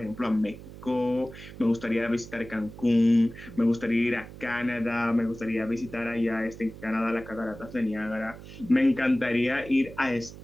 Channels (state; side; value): noise; right; hum, 15 dB below the sound